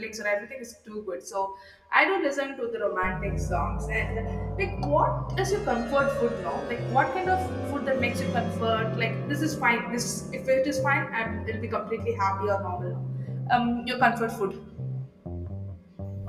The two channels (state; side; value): identical; both; correlation 1.00